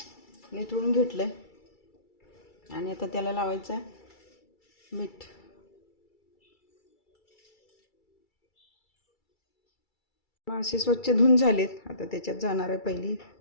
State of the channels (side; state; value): right; late; 2.3 ms